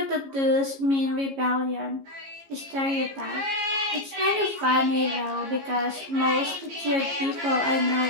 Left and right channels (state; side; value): late; left; 15 ms